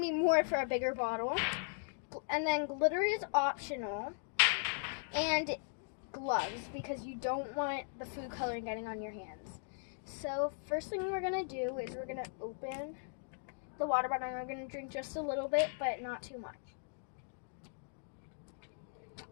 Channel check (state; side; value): silent; right; digital silence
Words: more for a bigger bottle. And then glitter is optional, and gloves because you don't want the food coloring getting on your hands. So first thing we're gonna do is we're gonna open the water bottle and we're gonna drink just a little bit, but not too much.